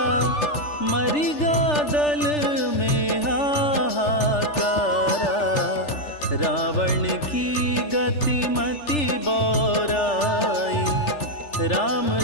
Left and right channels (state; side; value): late; right; 3.4 ms